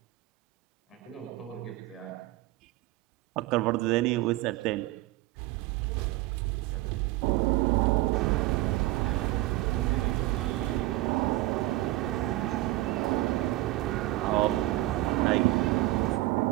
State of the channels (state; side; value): quieter; left; 18.0 dB